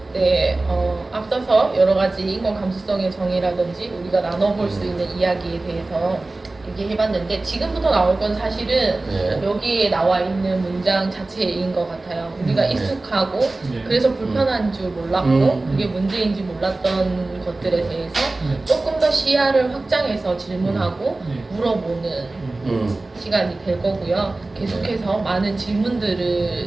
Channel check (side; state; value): left; quieter; 3.1 dB